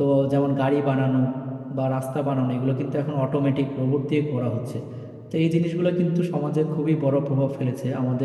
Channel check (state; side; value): identical; both; correlation 1.00